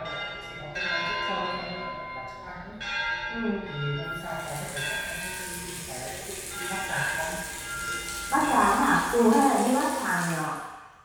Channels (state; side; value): identical; both; correlation 1.00